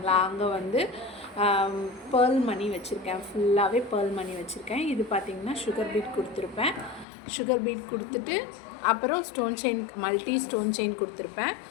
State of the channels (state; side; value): drops out; right; at 7.1 s